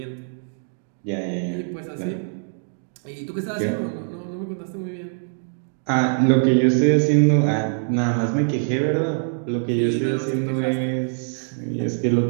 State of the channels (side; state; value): left; silent; digital silence